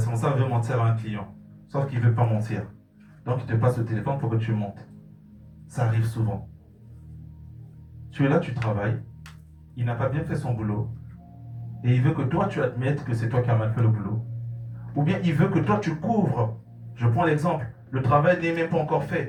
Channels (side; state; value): both; identical; correlation 1.00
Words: veut mentir à un client, sauf qu'il ne veut pas mentir. Donc il te passe le téléphone pour que tu montes. Ça arrive souvent. Tu es là, tu travailles. Il n'a pas bien fait son boulot. Et il veut que toi, tu admettes que c'est toi qui as mal fait le boulot. Ou bien il veut que toi, tu couvres. Je prends l'exemple. Le travail n'est même pas encore